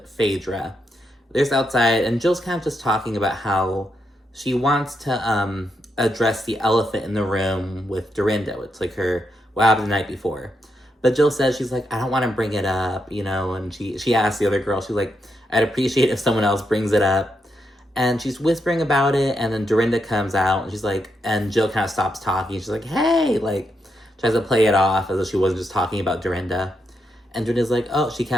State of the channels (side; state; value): both; normal; correlation 0.82